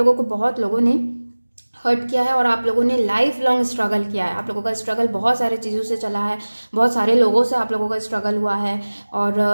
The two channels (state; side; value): inverted; both; correlation -1.00